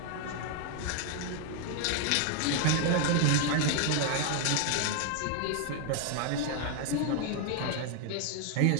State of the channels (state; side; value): different; both; correlation 0.00